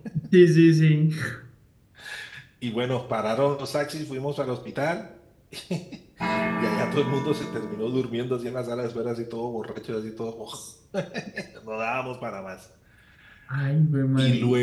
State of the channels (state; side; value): identical; both; correlation 1.00